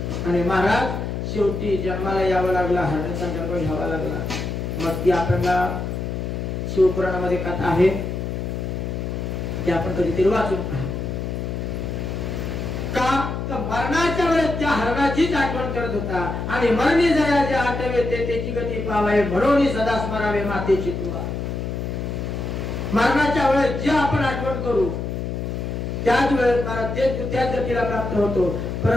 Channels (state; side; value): noise; left; hum, 4 dB below the sound